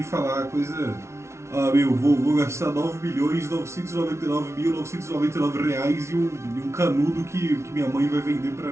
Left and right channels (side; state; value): left; late; 0.13 ms